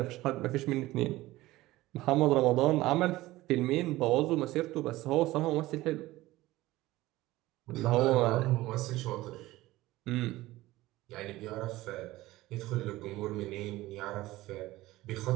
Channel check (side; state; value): left; quieter; 17.7 dB